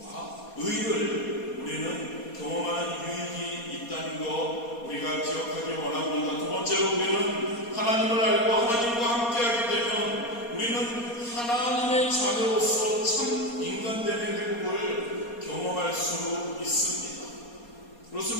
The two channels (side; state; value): right; late; 4.2 ms